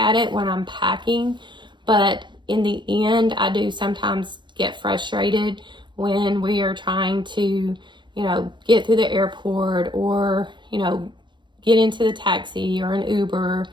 it when I'm packing. But in the end, I do sometimes get frustrated when we are trying to, you know, get through the airport, or, you know, get into the taxi or an Uber,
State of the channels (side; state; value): left; late; 0.23 ms